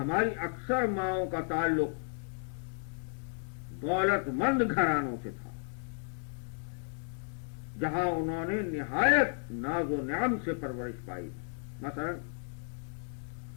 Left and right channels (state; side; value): silent; right; 55 dB below the other